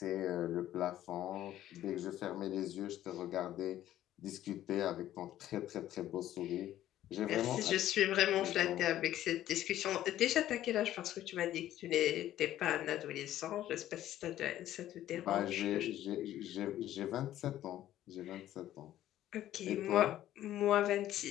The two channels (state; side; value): quieter; right; 12.9 dB